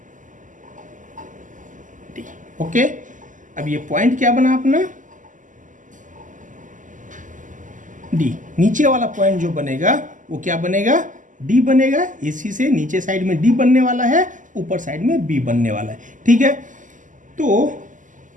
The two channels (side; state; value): left; late; 0.37 ms